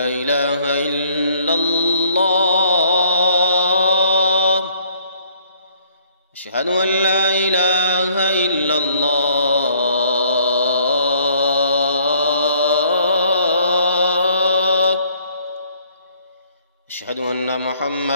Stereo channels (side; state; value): both; inverted; correlation -0.61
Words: إله إلا الله أشهد أن لا إله إلا الله أشهد أن